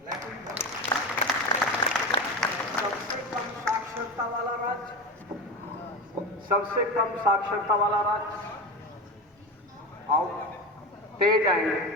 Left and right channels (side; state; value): both; normal; correlation 0.22